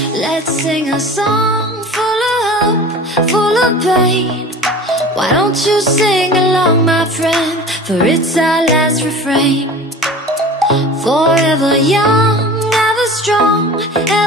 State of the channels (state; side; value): normal; both; correlation 0.38